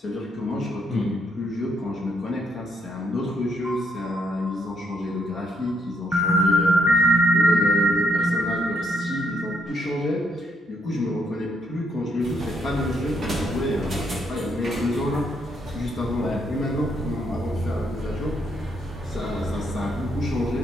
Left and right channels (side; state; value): both; normal; correlation 0.74